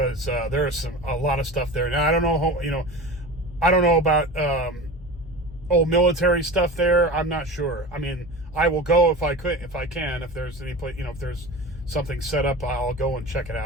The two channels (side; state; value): both; normal; correlation 0.32